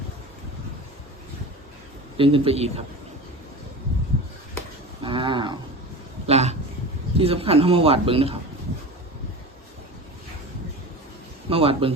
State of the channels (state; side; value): normal; both; correlation 0.31